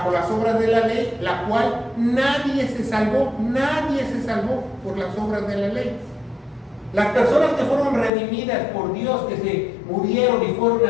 las obras de la ley, la cual nadie se salvó por las obras de la ley. Las personas que fueron redimidas por Dios, que se murieron y fueron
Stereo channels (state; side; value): drops out; right; at 8.1 s